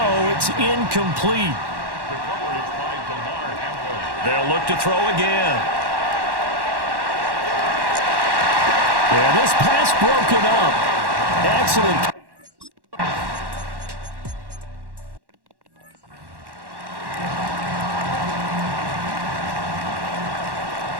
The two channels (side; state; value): left; late; 1.1 ms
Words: it's incomplete. They'll look to throw again. Yeah, this pass broken up. Excellent.